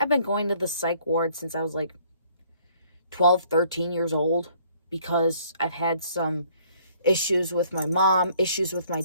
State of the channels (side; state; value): both; inverted; correlation -0.61